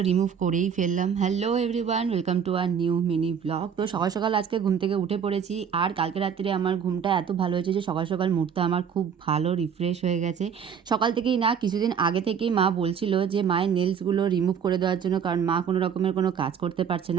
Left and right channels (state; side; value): quieter; left; 7.5 dB